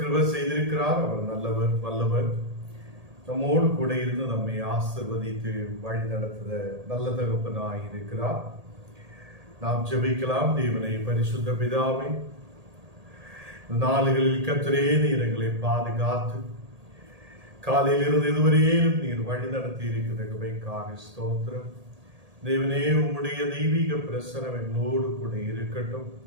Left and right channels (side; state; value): left; late; 1.8 ms